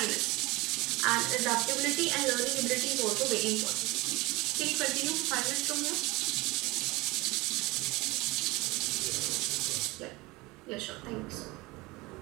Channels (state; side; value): quieter; left; 22.5 dB